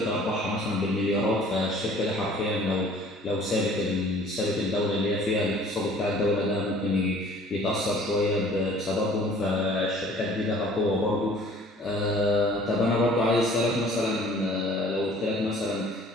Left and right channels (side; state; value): both; normal; correlation 0.51